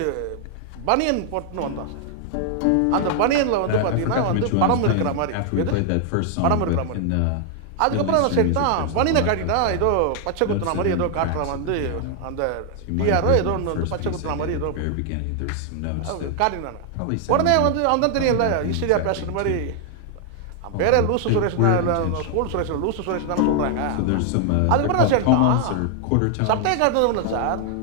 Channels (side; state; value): both; different; correlation 0.00